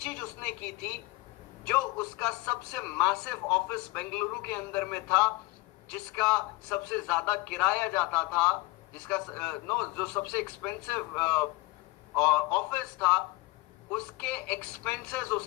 उसने की थी, जो उसका सबसे मैसिव ऑफिस बेंगलुरु के अंदर में था, जिसका सबसे ज्यादा किराया जाता था, जिसका जो सबसे एक्सपेंसिव ऑफिस था, उसके एक्सपेंसेस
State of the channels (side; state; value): right; quieter; 22.3 dB